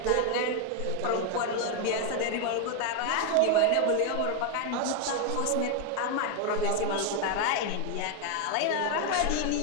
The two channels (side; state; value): both; different; correlation 0.01